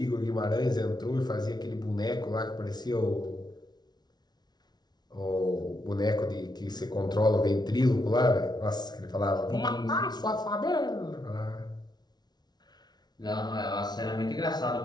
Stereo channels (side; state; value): right; late; 0.19 ms